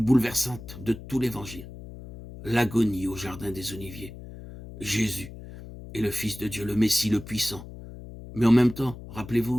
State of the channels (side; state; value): left; noise; hum, 14 dB below the sound